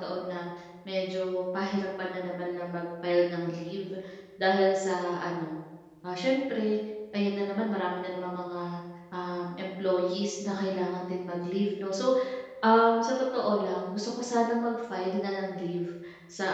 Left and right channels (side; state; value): both; identical; correlation 1.00